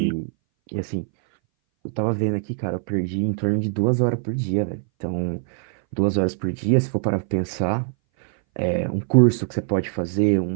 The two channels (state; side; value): silent; left; 60 dB below the other